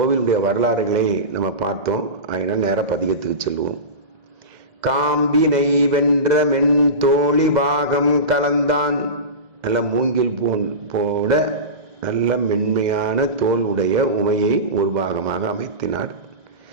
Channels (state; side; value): late; left; 2.0 ms